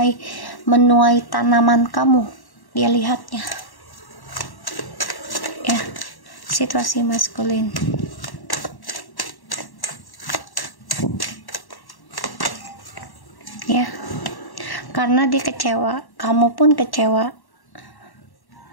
menuai tanaman kamu. Dia lihatnya ya, situasi maskulin. Ya, karena dia kecewa, kamu pun kecewa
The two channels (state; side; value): late; right; 1.1 ms